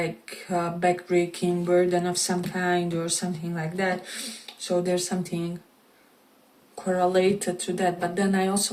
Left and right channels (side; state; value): both; identical; correlation 1.00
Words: a backbreaking burden of some kind or something like that. So there's something correlated to that. But then I